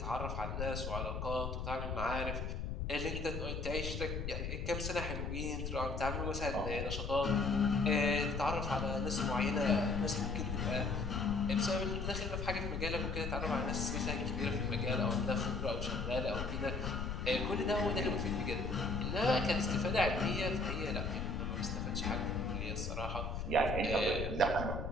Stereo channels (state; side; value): noise; left; rumble, 3 dB below the sound